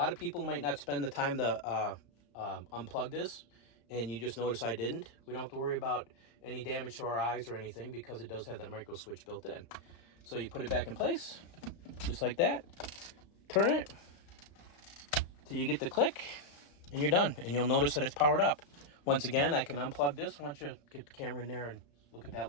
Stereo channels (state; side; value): late; right; 35 ms